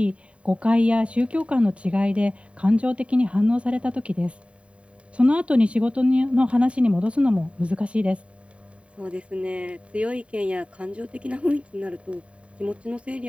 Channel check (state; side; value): late; left; 0.062 ms